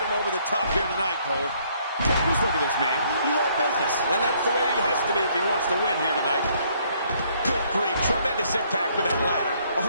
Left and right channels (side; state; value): both; inverted; correlation -0.66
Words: him over the top here tonight, Cole. Just look at this man. He's all business. And that's the way he has to be if he wants to win here tonight. Good grief. Tremendous impact with that ladder.